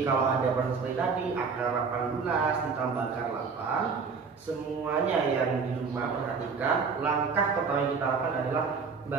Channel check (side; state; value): left; quieter; 5.2 dB